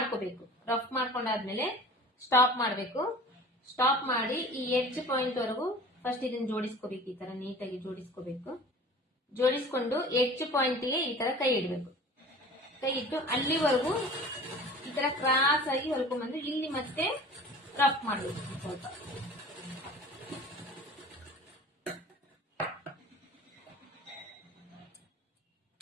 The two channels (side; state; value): both; normal; correlation 0.41